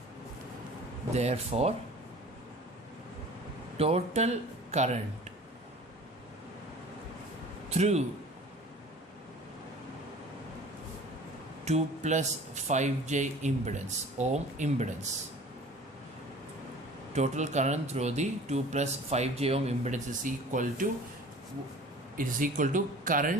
total current through 2 plus 5j impedance, ohm impedance, total current through the 2 plus 5j ohm impedance is equal to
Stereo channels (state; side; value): normal; both; correlation 0.45